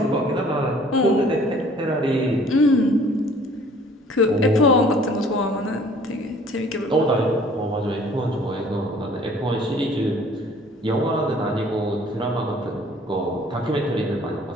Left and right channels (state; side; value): normal; both; correlation 0.54